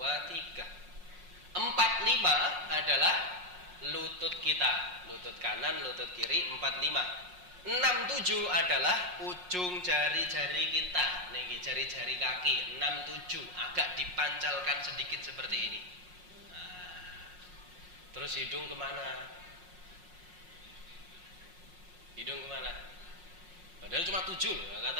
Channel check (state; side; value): late; left; 5.5 ms